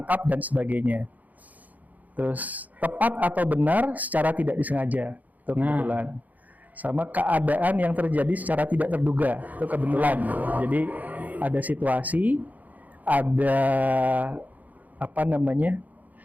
dan sebagainya. Terus tepat atau benar secara tidak disengaja, itu kebetulan. Sama keadaan yang terjadi secara tidak terduga, itu kebetulan. Jadi ada situasi, ada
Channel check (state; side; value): late; left; 0.080 ms